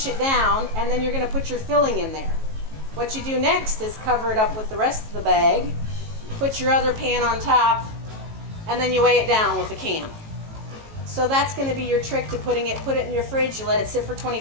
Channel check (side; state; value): left; late; 18 ms